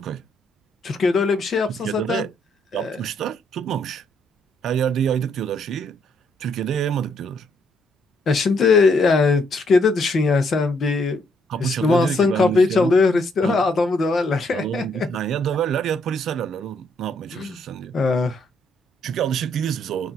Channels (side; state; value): both; normal; correlation 0.72